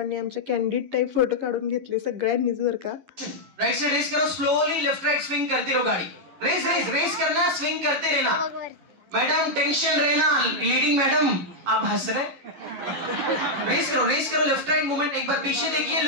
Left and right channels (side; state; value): left; late; 11 ms